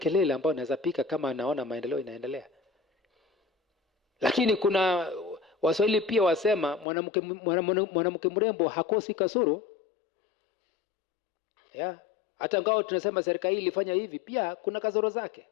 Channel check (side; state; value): right; drops out; at 6.9 s